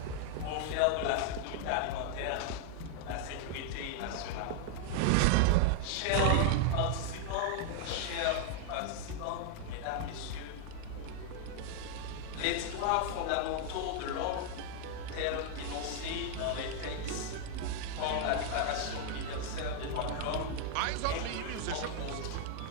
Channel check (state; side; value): different; both; correlation 0.00